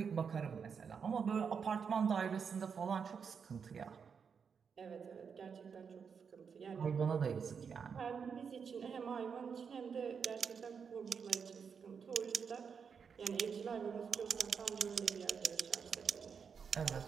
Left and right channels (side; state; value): left; quieter; 6.4 dB